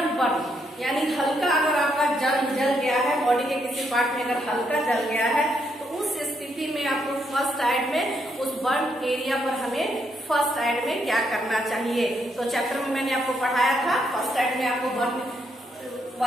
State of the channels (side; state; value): both; normal; correlation 0.76